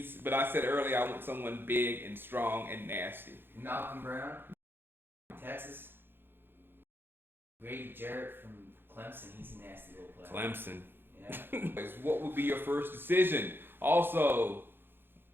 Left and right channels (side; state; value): left; late; 0.10 ms